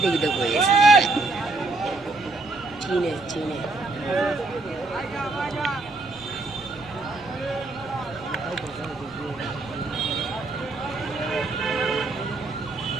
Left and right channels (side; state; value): left; quieter; 3.2 dB